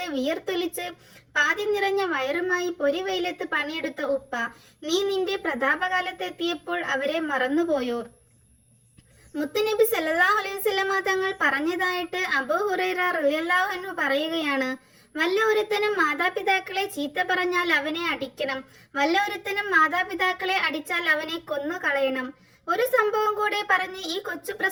വിയർത്തൊലിച്ച് പാതി നിറഞ്ഞ വയറുമായി പൊരിവെയിലത്ത് പണിയെടുത്ത ഉപ്പ, നീ നിന്റെ പ്രതാപകാലത്തെത്തിയപ്പോൾ അവരെ മറന്നുപോയോ? മുത്തുനബി സല്ലല്ലാഹു അലൈഹി വസല്ലമ തങ്ങൾ പറഞ്ഞതായിട്ട് അബൂ ഹുറൈറ റളിയല്ലാഹു അൻഹു പറയുകയാണ്, വല്ല ഒരുത്തനും മാതാപിതാക്കളെ ചീത്ത പറഞ്ഞാൽ അവനെ അടിക്കണം, വല്ല ഒരുത്തനും മാതാപിതാക്കളെ അടിച്ചാൽ അവനെ കൊന്നു കളയണം. ഒരു സംഭവം കൂടെ പറഞ്ഞ് ഈ കൊച്ചു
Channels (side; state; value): both; identical; correlation 1.00